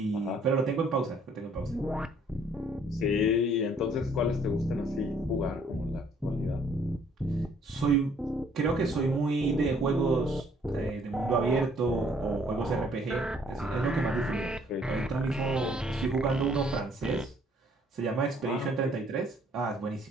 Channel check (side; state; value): both; normal; correlation 0.62